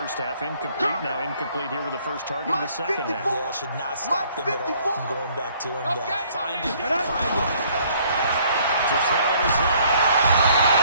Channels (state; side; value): inverted; both; correlation -0.62